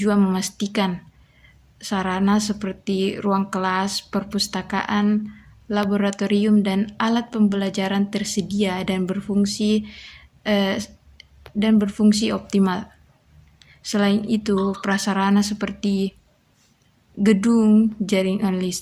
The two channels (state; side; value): identical; both; correlation 1.00